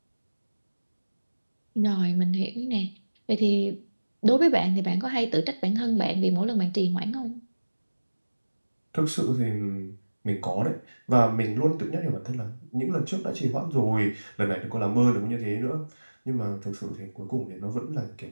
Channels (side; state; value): both; inverted; correlation -1.00